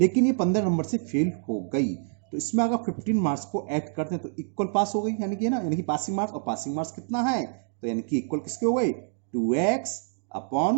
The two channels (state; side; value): silent; left; digital silence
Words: ये 15 नंबर से फेल हो गई, तो इसमें अगर 15 मार्क्स को ऐड करते हैं तो इक्वल पास हो गई, यानी कि ना, यानी कि पासिंग मार्क्स, और पासिंग मार्क्स कितना है, तो यानी कि इक्वल किसके हो गए, 2x